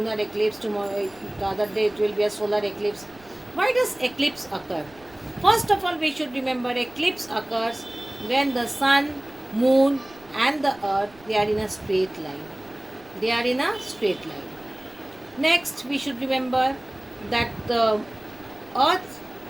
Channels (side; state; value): right; noise; rumble, 25 dB below the sound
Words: eclipse, tomorrow the other day it will be a solar eclipse. Why does eclipse occur? First of all, we should remember eclipse occurs when the sun, moon and the earth, they are in a straight line. They are in a straight line. Next, we should remember that the earth